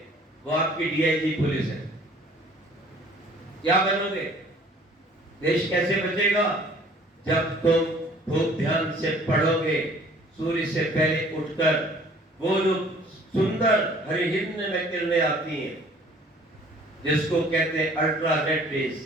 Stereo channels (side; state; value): both; normal; correlation 0.54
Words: वो आपकी DIG पुलिस है। क्या बनोगे? देश कैसे बचेगा? जब तुम खूब ध्यान से पढ़ोगे, सूर्य से पहले उठकर, वो जो सुंदर हरिहिंद में किरणें आती हैं जिसको कहते हैं अल्ट्रावायलेट